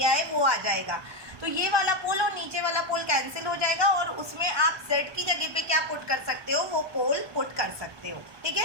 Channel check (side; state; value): left; late; 1.2 ms